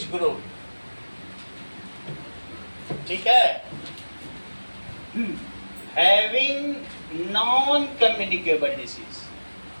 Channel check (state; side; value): inverted; both; correlation -1.00